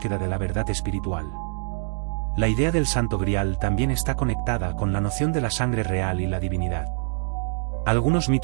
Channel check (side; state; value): left; silent; digital silence